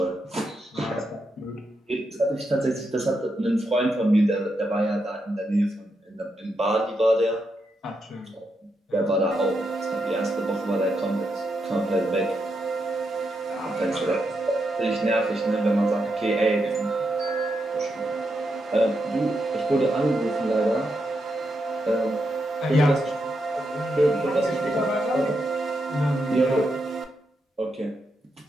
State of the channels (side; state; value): both; normal; correlation 0.83